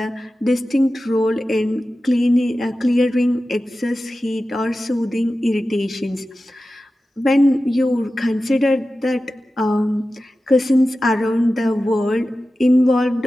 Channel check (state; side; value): normal; both; correlation 0.94